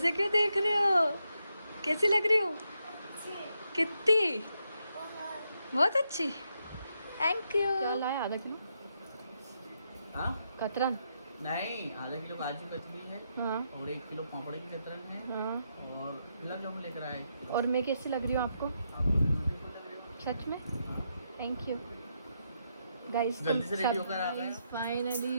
क्यों देख रहे हो? कैसी लग रही हूँ? कितनी? बहुत अच्छी, थैंक यू। क्या लाया? आधा किलो कतरन? नहीं, आधा किलो काजू कतली है। हाँ। और 1 किलो पापड़ की कतरन है। हाँ। और गुलाब जामुन लेकर आए। और मैं कैसी लग रही हूँ आपको? आपको ब्यूटीफुल लग रही हो। सच में? Thank you guys. जल्दी से रेडी होकर आ गए। फाइनली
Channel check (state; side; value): inverted; both; correlation -0.81